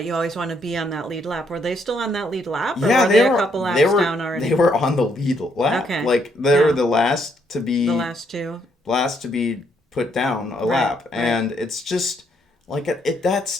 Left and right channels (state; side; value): normal; both; correlation 0.72